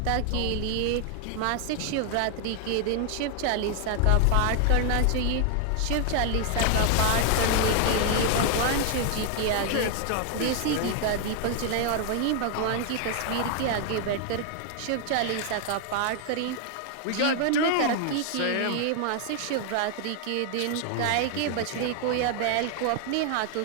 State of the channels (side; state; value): both; different; correlation 0.00